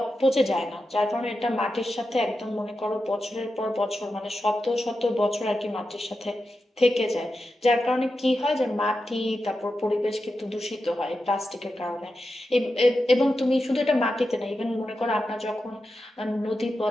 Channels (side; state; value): both; normal; correlation 0.90